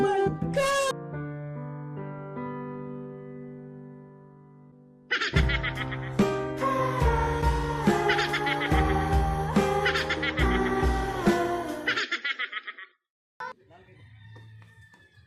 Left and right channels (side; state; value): both; identical; correlation 1.00